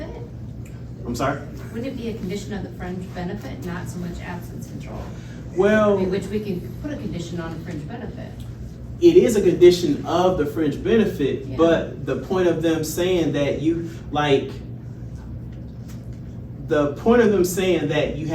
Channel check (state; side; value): identical; both; correlation 1.00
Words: I'm sorry. Wouldn't it be a condition of the fringe benefit, not so much absence control? I Well, mean, which we can put a condition on a fringe benefit. it is a condition of the fringe benefit, Yeah. but the point of them saying that you, like, the point of them saying that you